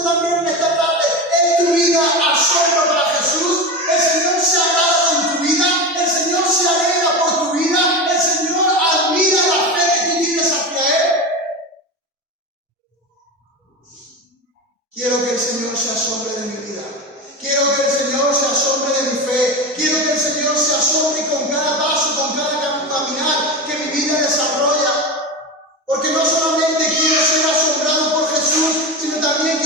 también en esta tarde, ¿es tu vida asombro para Jesús? ¿El Señor se agrada con tu vida? ¿El Señor se alegra por tu vida? ¿El Señor admira la fe que tú tienes hacia Él? Quiero que el Señor se asombre de mi vida. Quiero que el Señor se asombre de mi fe. Quiero que el Señor se asombre con cada paso, con cada caminar que mi vida desarrolla. Porque no solamente quiero ser asombrado por Jesús, sino también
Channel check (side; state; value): both; normal; correlation 0.22